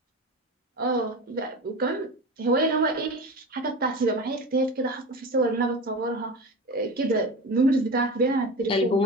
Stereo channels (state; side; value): normal; both; correlation 0.28